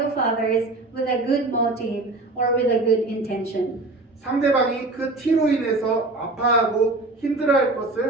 others with a good motive or with a good intention. 상대방이 그 티로 인해서 아파하고 힘들어할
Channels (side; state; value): left; quieter; 3.1 dB